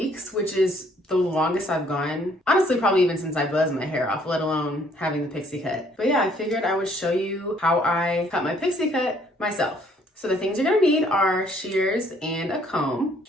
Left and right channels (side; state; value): both; normal; correlation 0.64